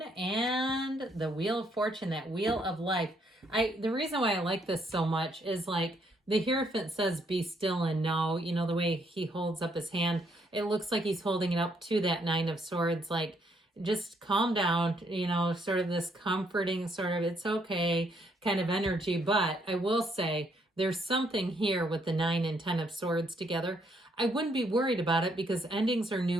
and the Wheel of Fortune, that Wheel of Life. The reason why I like this so much is, like, the Hierophant says, be still and know. You know, the way he holds up his hand, it looks like he's holding it up to that Nine of Swords, like, just calm down, you know, sort of this comforting sort of, it's okay kind of energy. But I will say there's something here with the 9 and 10 of Swords together. I wouldn't be worried about it because endings are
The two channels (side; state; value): both; normal; correlation 0.71